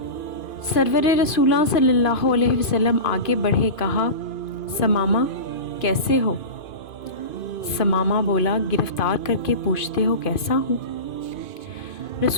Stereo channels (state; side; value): late; right; 2.5 ms